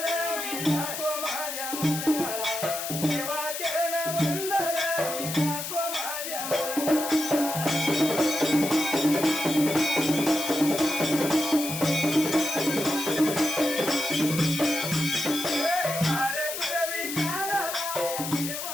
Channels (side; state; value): left; noise; hiss, 5 dB below the sound